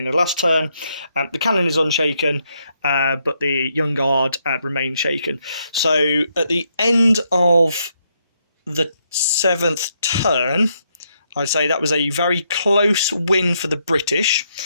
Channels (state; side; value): inverted; both; correlation -0.77